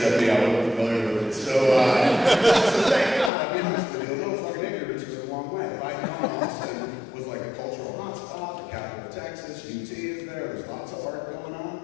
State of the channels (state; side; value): drops out; right; at 3.3 s